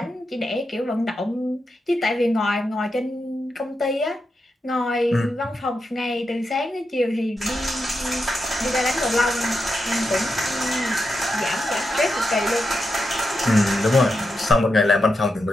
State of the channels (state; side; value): normal; both; correlation 0.87